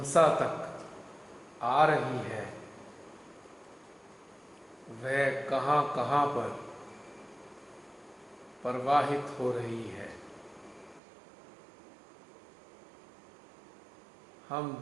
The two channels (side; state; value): left; drops out; at 11.0 s